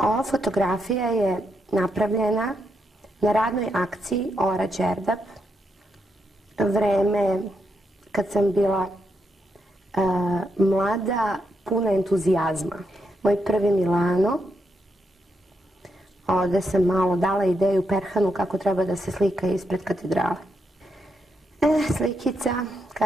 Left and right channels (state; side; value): normal; both; correlation 0.81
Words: fotografija je napravljena na radnoj akciji Ora Đerdap, vreme kad sam bila mlada, puna entuzijazma. Moj prvi Milano, ovde sam malo dala ideju Perhanu kako treba da se slika ispred katedrale. Slikica